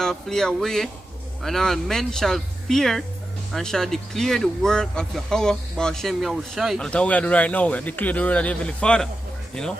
flee away, and all men shall fear and shall declare the work of Yahweh Ba'ashem Yahushai. And that's what we are doing right now. We are declaring the word of the Heavenly Father. You know?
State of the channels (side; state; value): both; normal; correlation 0.91